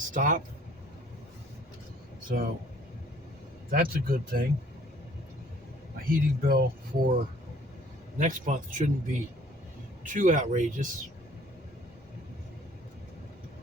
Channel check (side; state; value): both; normal; correlation 0.56